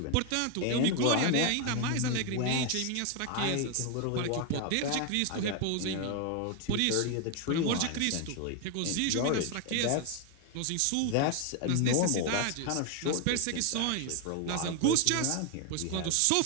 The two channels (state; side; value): different; both; correlation 0.01